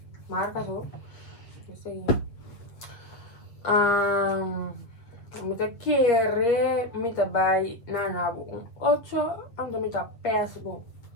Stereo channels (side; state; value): right; late; 8.2 ms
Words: Marca só. Esse aí. Mita querer. Mita vai. Nanabu. 8. Ando mita peça bo.